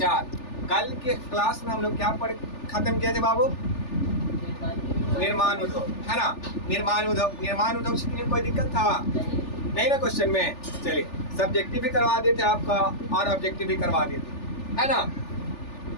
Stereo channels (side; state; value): right; late; 3.4 ms